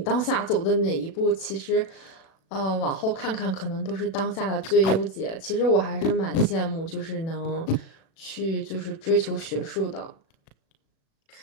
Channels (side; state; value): right; late; 37 ms